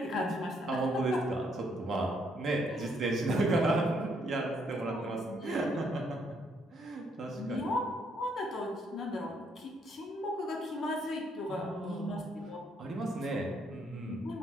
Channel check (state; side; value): normal; both; correlation 0.71